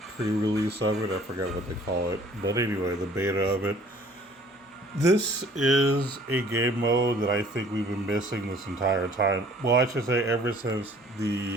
of it. I forgot what they call it, but anyway, the beta of it. This is a game mode that I think we've been missing this entire time. Well, I should say ever since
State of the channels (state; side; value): normal; both; correlation 0.54